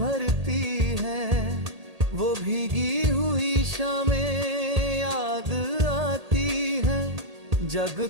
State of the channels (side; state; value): left; late; 1.8 ms